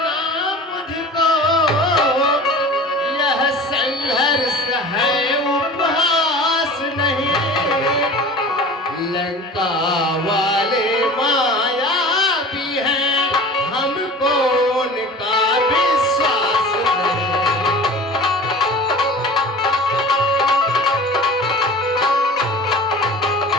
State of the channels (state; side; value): normal; both; correlation 0.39